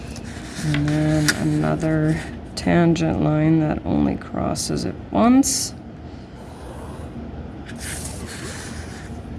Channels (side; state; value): both; identical; correlation 1.00